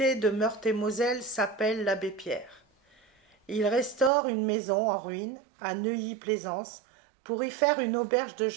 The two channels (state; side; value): drops out; left; at 4.1 s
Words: de Meurthe-et-Moselle s'appelle l'abbé Pierre. Il restaure une maison en ruine à Neuilly-Plaisance pour y faire une auberge de